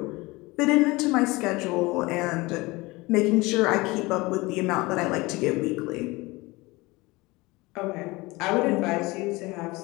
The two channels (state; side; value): quieter; right; 22.5 dB